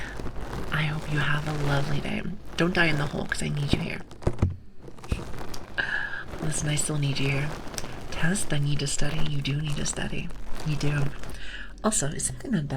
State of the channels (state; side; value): identical; both; correlation 1.00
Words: I hope you have a lovely day. Don't die in the hole, because I need you here. Listen, I still need you here. Test, I need to study. You do need to study. You do. Also, it's something